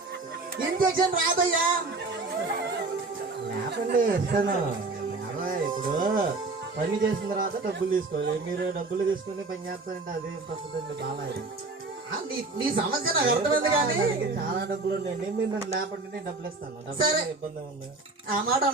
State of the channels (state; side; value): quieter; left; 3.6 dB